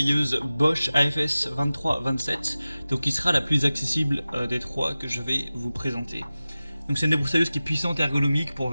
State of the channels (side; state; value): both; inverted; correlation -0.96